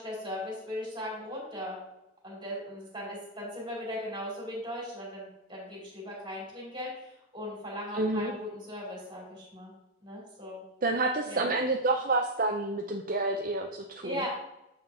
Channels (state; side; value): normal; both; correlation -0.01